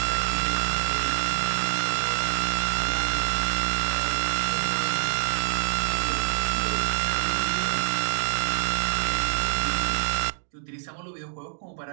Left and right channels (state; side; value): silent; left; 61 dB below the other